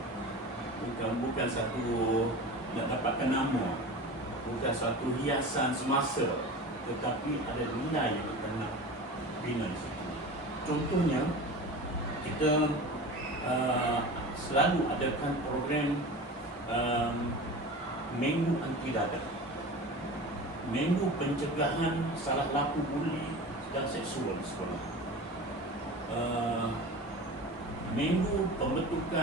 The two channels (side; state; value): both; normal; correlation 0.33